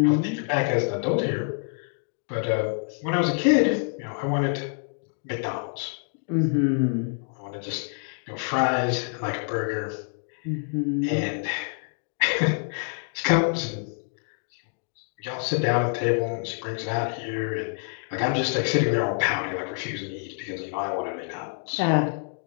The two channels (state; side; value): silent; right; 60 dB below the other